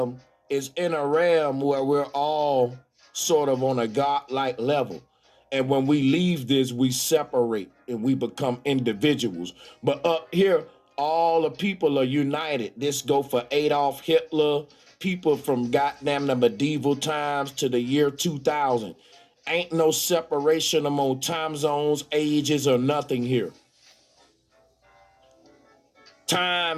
is in a realm where we're all sort of on a godlike level. And when we leave this, we separate and we become individuals. But up here, all the people are united. This go for Adolf Hitler, people from goddamn the medieval times to the year 2000. Ain't no separation among time zones, ages, or nothing here.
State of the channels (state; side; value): identical; both; correlation 1.00